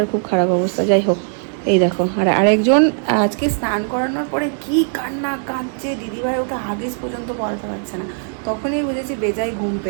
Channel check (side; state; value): left; silent; 66 dB below the other